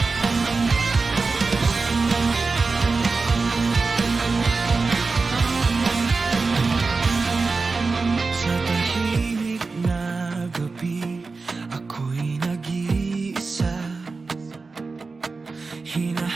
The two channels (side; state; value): left; quieter; 4.1 dB